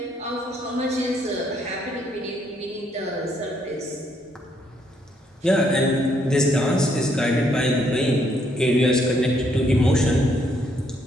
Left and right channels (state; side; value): normal; both; correlation 0.71